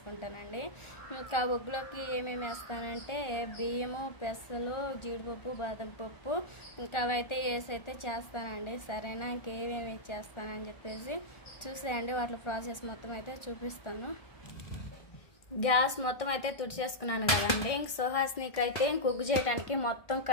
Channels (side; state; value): right; late; 1.4 ms